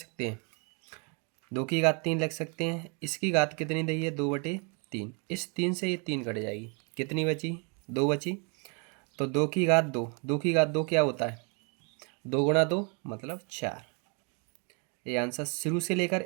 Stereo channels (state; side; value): quieter; left; 35.1 dB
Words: हैं, 2⁻3 लिख सकते हैं। इसकी घात कितनी दी है, 2/3। इस 3 से ये 3 कट जाएगी, कितनी बची, 2 बची। तो 2⁻2, 2⁻2 क्या होता है, 2 × 2 मतलब 4। ये आंसर शुरू से लेकर